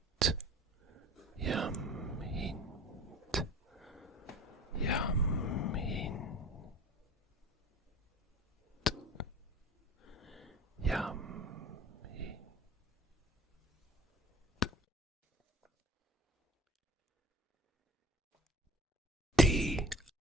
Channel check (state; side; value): normal; both; correlation 0.42